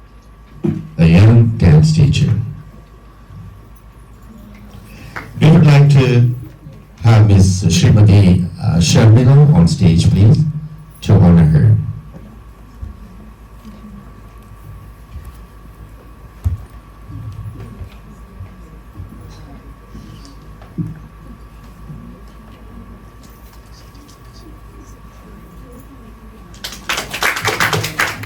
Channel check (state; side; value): identical; both; correlation 1.00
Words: a young dance teacher. We would like to have Ms. Srimati Sharmila on stage, please, to honor her.